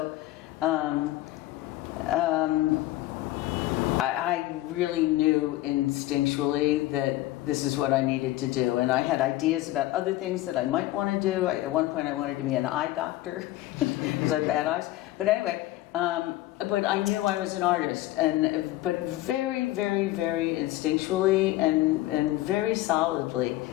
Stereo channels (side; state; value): right; quieter; 16.4 dB